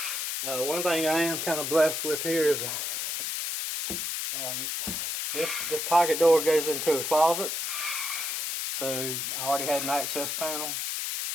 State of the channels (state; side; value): noise; left; hiss, 2 dB below the sound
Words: One thing I am kind of blessed with here is this pocket door goes into a closet, so I already had an access panel,